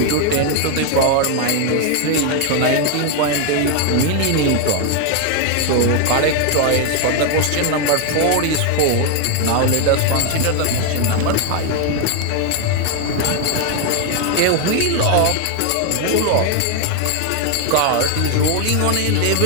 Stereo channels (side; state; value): both; different; correlation 0.01